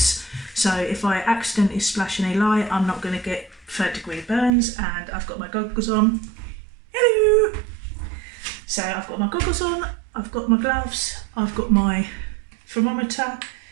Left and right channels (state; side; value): drops out; left; at 4.5 s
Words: So if I accidentally splash any lye, I'm not going to get 3rd-degree burns. And I've got my goggles on. Hello! So I've got my goggles on, I've got my gloves, I've got my thermometer.